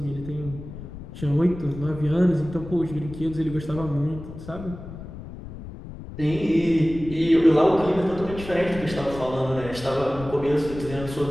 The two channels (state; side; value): noise; left; rumble, 12 dB below the sound